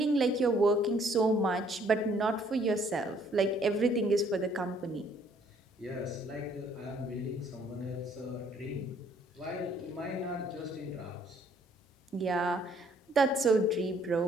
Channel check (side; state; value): both; normal; correlation 0.63